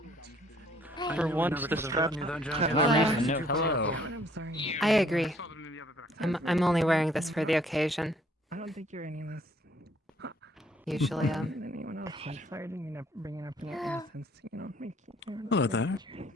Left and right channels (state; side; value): normal; both; correlation 0.62